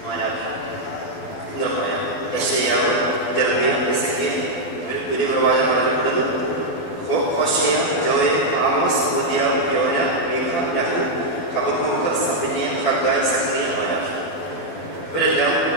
എന്ന് പറയാം. യെശയ്യാവ്, ജെറമ്യ, എസെക്കിയേൽ വലിയ പ്രവാചകന്മാരപ്പെടുന്നു. ഹോശയ, ജോയൽ, ആമോസ്, ഒബദ്യാവ്, യോന, മീഖ, നഹൂ, ഹബക്കൂക്ക്, സഫന്യ, ഹഗ്ഗായി, സഖറിയ, മാലാഖി. ഇവരെല്ലാം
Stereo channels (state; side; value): late; right; 12 ms